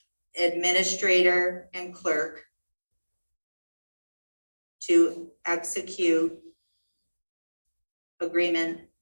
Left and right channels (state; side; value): inverted; both; correlation -1.00